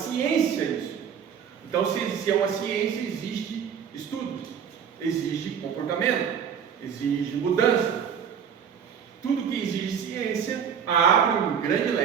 isso. Então, se é uma ciência, existe estudo, exige comportamento, exige mudança. Tudo que exige ciência abre um grande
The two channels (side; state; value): left; quieter; 7.7 dB